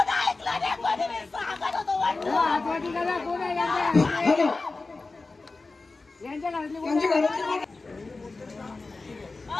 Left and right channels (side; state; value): right; quieter; 3.6 dB